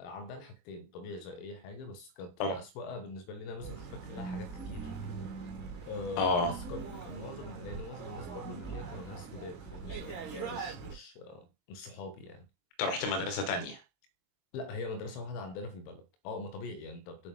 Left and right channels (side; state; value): right; late; 23 ms